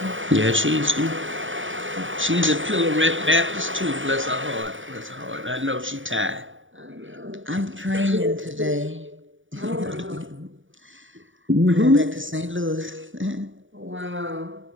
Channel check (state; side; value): late; left; 0.57 ms